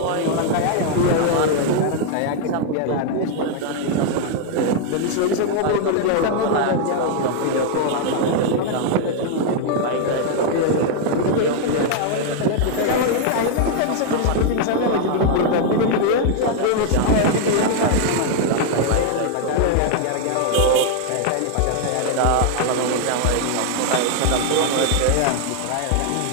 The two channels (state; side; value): different; both; correlation 0.00